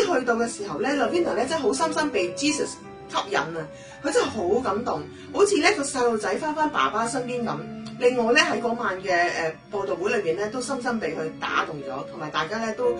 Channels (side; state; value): both; identical; correlation 1.00